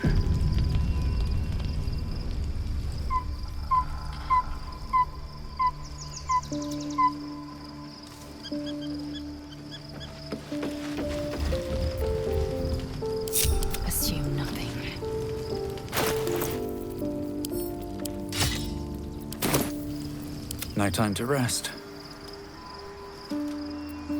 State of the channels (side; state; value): both; identical; correlation 1.00